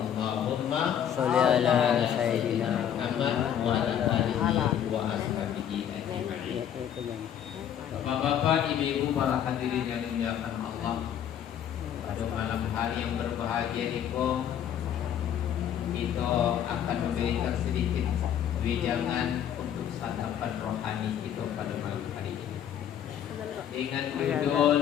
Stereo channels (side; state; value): right; quieter; 9.6 dB